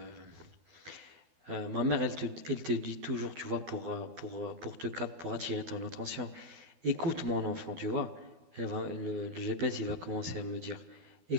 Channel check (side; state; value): left; late; 12 ms